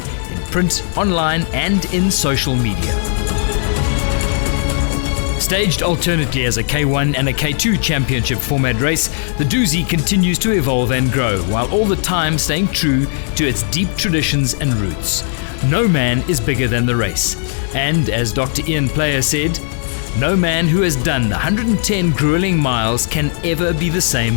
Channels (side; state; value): right; silent; digital silence